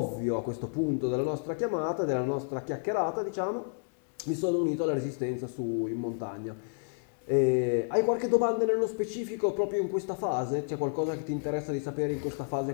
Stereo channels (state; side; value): silent; right; digital silence